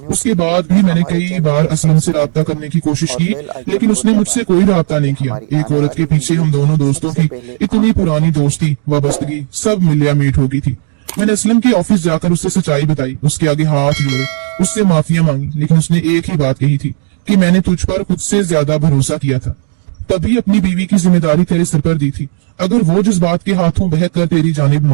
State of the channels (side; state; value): left; silent; digital silence